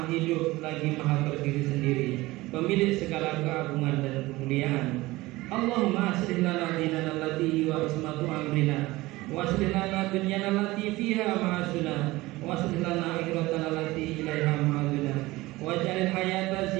hidup lagi maha berdiri sendiri, pemilik segala keagungan dan kemuliaan. Allahumma aslih lana dinana allati wa ismatu amrina wa aslih lana dunyana allati fiha ma'asuna wa aslih lana akhiratana allati ilaiha ma'aduna waj'alil hayata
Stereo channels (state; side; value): quieter; left; 19.6 dB